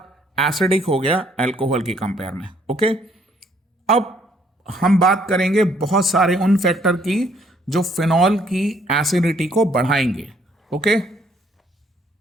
एसिडिक हो गया एल्कोहल की कंपेयर में। ओके, अब हम बात करेंगे बहुत सारे उन फैक्टर की जो फिनॉल की एसिडिटी को बढ़ाएंगे। ओके,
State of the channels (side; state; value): both; normal; correlation 0.66